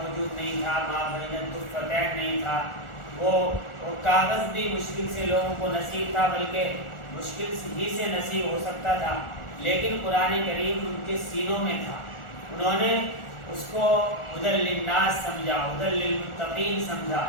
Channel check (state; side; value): late; right; 1.4 ms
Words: نہیں تھا، ما بین الدفتین نہیں تھا، وہ کاغذ بھی مشکل سے لوگوں کو نصیب تھا، بلکہ مشکل ہی سے نصیب ہو سکتا تھا، لیکن قرآن کریم ان کے سینوں میں تھا۔ انہوں نے اس کو ہدی للناس سمجھا، ہدی للمتقین سمجھا،